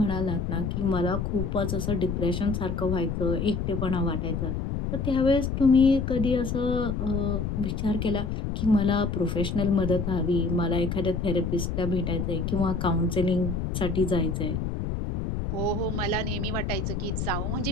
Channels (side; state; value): left; noise; rumble, 2 dB below the sound